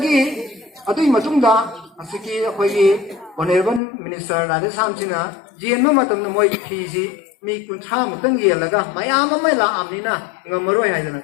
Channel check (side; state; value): right; drops out; at 3.8 s